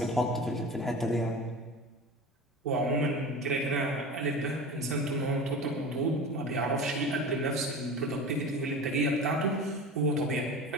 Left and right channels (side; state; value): both; normal; correlation 0.32